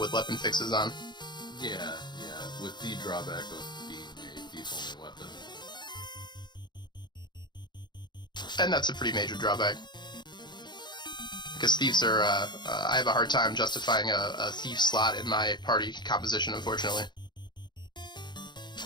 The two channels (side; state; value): right; late; 0.21 ms